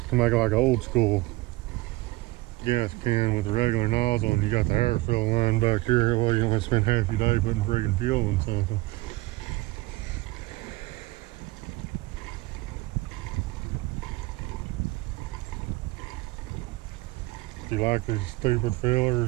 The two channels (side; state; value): left; quieter; 20.5 dB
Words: to make it like an old school gas can with a regular nozzle, and you got the air fill line back here. Well, you don't have to spend half your day putting friggin' fuel in something. If you like these stupid